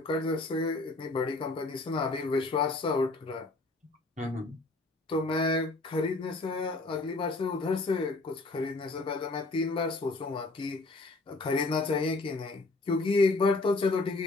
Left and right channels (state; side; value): quieter; right; 3.2 dB